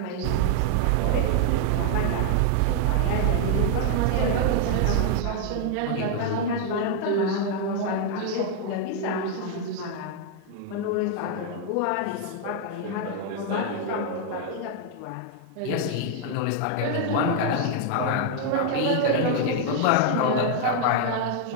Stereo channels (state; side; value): different; both; correlation 0.00